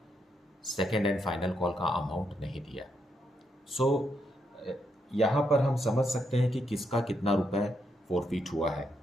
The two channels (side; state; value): both; normal; correlation 0.79